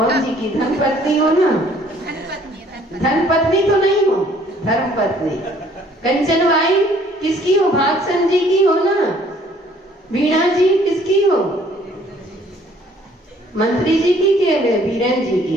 जी की धर्म पत्नी हो ना? धर्म पत्नी तो नहीं हो, धर्म पत्नी। कंचन भाई किसकी हो? भागसन जी की हो ना? वीणा जी किसकी हो? मंत्री जी की के वीरेन जी की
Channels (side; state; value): both; normal; correlation 0.59